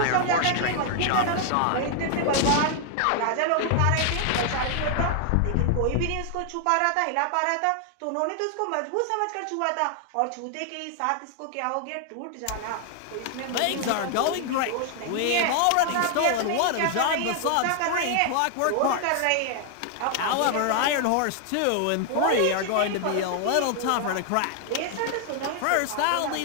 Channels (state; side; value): different; both; correlation 0.00